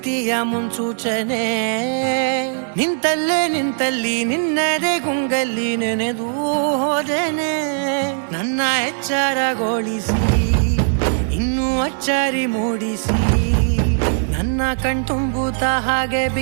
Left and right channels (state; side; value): silent; left; digital silence